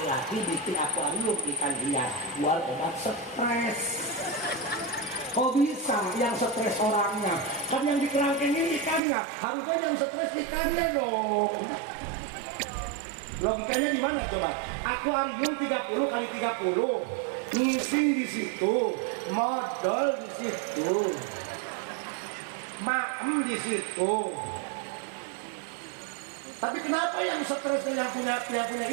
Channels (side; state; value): left; drops out; at 9.0 s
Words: bikin akuarium ikan hias buat obat stres kok bisa yang stres orangnya kan yang di kerangkengin ikannya harusnya yang stres ikannya dong logikanya di mana coba akuarium 30 kali 30 ngisi di situ modal di situ maem di situ. Tapi kenapa yang stresnya yang punya